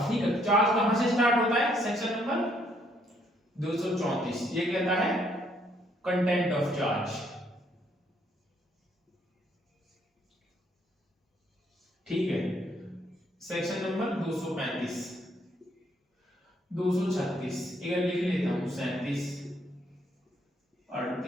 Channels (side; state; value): both; normal; correlation 0.69